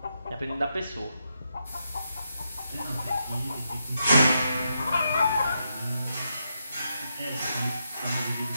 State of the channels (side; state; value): both; inverted; correlation -0.83